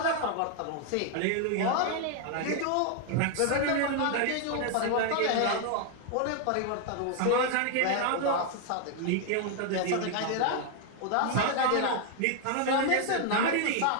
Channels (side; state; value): both; different; correlation 0.00